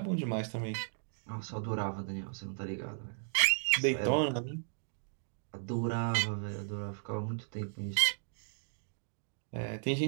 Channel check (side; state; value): left; silent; digital silence